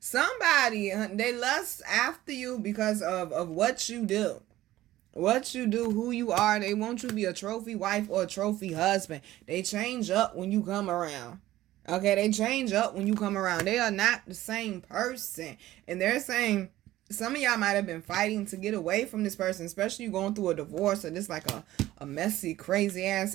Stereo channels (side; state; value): left; quieter; 15.3 dB